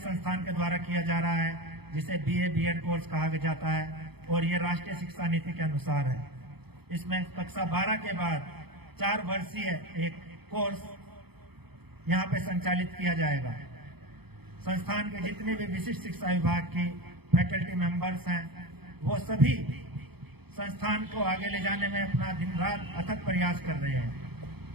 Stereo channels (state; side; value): late; left; 0.97 ms